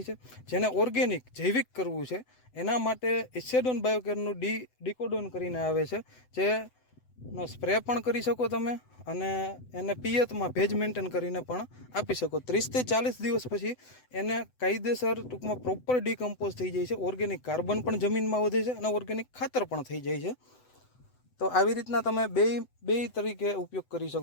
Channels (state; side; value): late; right; 7.9 ms